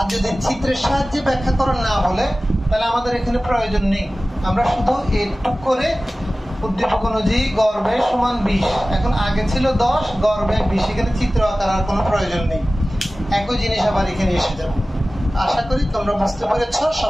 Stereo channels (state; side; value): normal; both; correlation 0.97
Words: যদি চিত্রের সাহায্যে ব্যাখ্যা করা না বলে, তাহলে আমাদের এখানে প্রয়োজন নেই। আমরা শুধু এটুক করে উদ্দীপক অনুযায়ী গড় ব্যয় সমান 20, এখন আগে ছিল 10, গড় ব্যয় 20, এখানে চিত্র আঁকার আর কোনো প্রয়োজন নেই। একই জিনিস আবার এখানে এসে যাবে। আশা করি তোমরা বুঝতে পেরেছ।